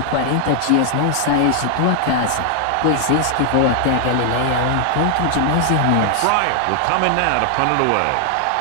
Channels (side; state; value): both; different; correlation 0.00